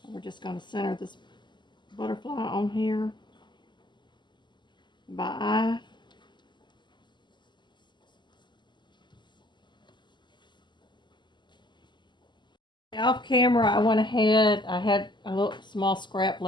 We're just going to center this butterfly on here by eye. Off camera, I went ahead, I had a little small scrap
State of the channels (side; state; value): right; late; 0.22 ms